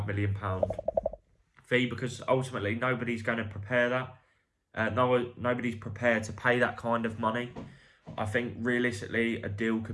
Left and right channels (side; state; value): both; identical; correlation 1.00